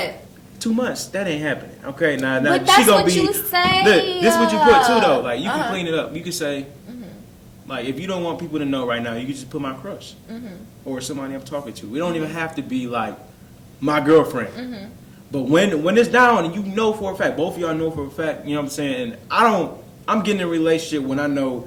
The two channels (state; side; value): identical; both; correlation 1.00